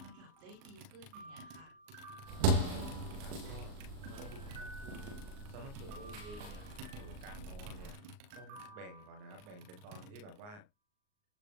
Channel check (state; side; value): late; left; 38 ms